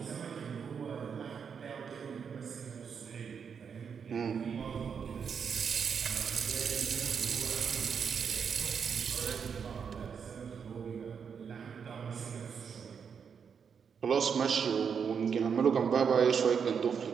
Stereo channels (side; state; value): left; quieter; 6.7 dB